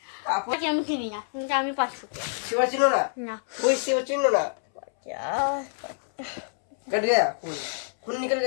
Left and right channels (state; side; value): silent; right; 60 dB below the other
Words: আমি চিনি না, কিন্তু আমি 5 ফুট শিবা চিনো না? कोई शिवा चिनो ना? कट गया खून निकल